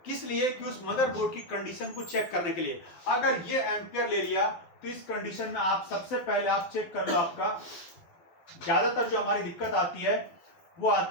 किस लिए? कि उस मदरबोर्ड की कंडीशन को चेक करने के लिए। अगर ये एम्पियर ले लिया तो इस कंडीशन में आप सबसे पहले आप चेक कर लो, आपका ज्यादातर जो हमारी दिक्कत आती है वो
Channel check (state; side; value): late; right; 12 ms